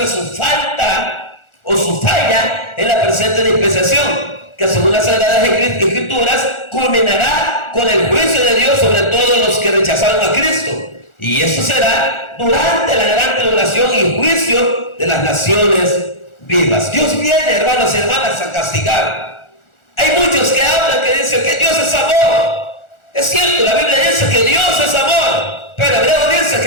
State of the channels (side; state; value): right; late; 1.4 ms